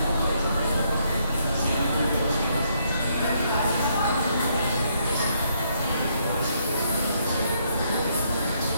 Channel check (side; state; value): both; inverted; correlation -0.73